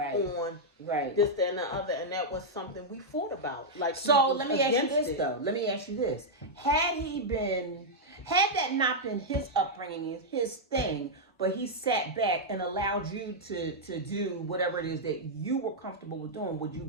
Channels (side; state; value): both; normal; correlation -0.05